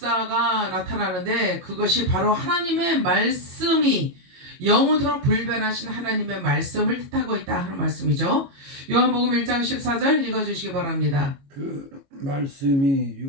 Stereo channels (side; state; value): left; late; 22 ms